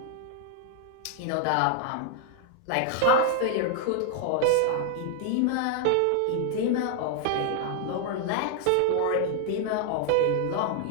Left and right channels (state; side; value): different; both; correlation 0.00